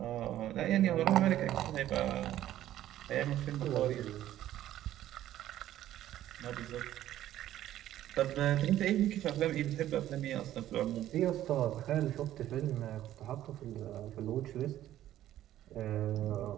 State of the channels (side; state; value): left; quieter; 12.9 dB